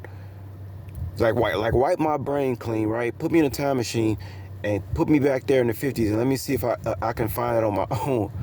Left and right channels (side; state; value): both; identical; correlation 1.00